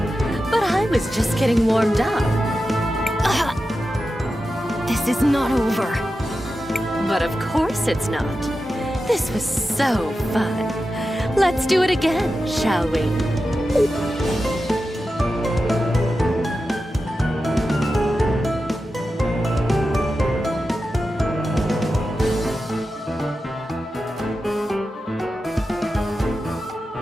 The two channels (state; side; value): normal; both; correlation 0.91